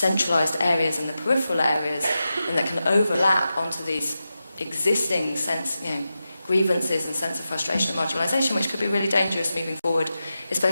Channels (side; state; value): both; inverted; correlation -0.91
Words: areas and the peripheral areas, and that can overlap onto these existing grievances and sense of frustration and marginalisation, which could be really dangerous moving forward,